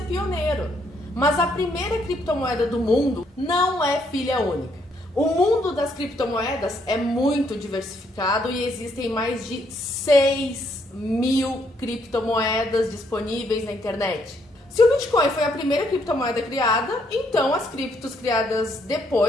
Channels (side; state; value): both; normal; correlation 0.72